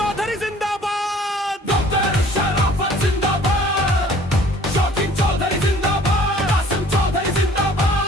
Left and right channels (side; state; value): both; normal; correlation 0.53